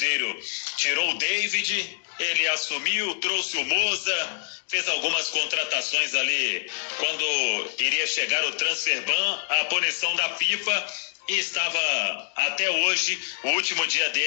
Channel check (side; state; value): right; silent; digital silence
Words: tirou o David, ele assumiu, trouxe o Moza, fez algumas contratações ali quando iria chegar o transfer ban, a punição da FIFA, e estava até hoje o último dia